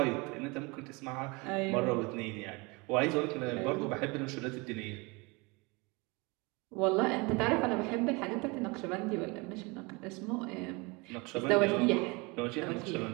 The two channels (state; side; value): quieter; left; 27.0 dB